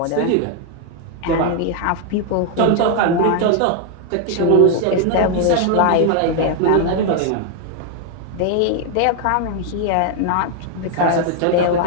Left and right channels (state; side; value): different; both; correlation 0.00